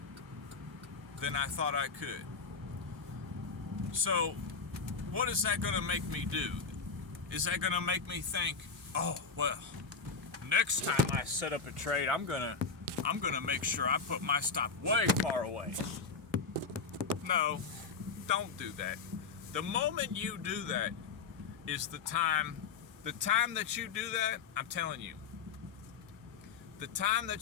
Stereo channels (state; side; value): quieter; right; 5.2 dB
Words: than I thought I could. So, what is that going to make me do? Is that going to make me think, oh, well, next time I set up a trade, I'm gonna make sure I put my stop way far away? No, don't do that. The moment you do that is the time that you do that, I'm telling you, the time